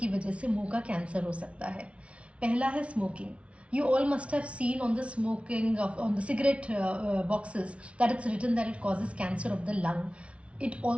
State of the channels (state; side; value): late; left; 0.062 ms